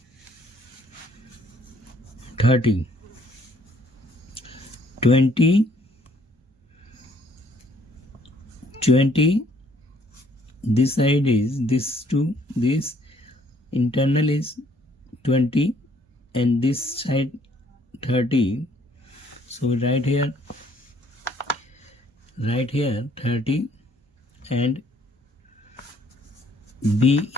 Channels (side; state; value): both; normal; correlation 0.63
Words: 20, this side is this to this, internal is 20 and this side 30. So right here 30 and B